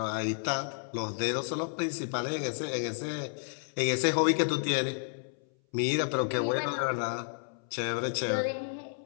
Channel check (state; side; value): silent; right; 57 dB below the other